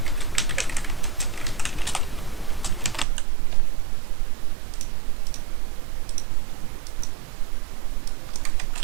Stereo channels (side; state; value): left; drops out; at 3.1 s